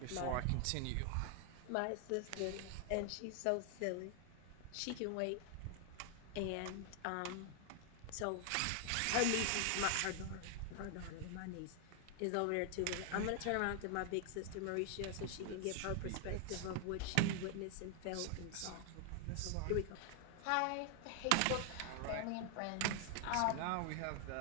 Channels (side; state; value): both; different; correlation 0.00